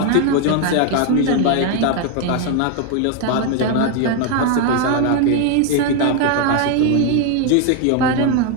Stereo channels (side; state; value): both; different; correlation 0.01